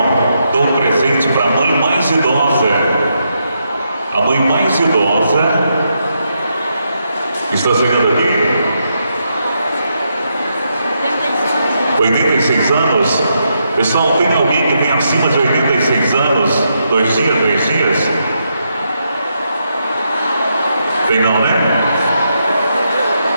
dou um presente para a mãe mais idosa. A mãe mais idosa está chegando aqui. 86 anos. Pessoal, tem alguém que tem acima de 86 anos? 2 dias, 3 dias? Tem não, né?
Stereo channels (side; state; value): both; inverted; correlation -0.81